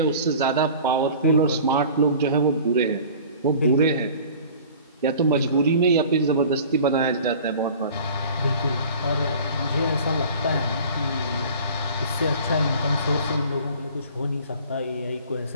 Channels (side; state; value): both; inverted; correlation -0.44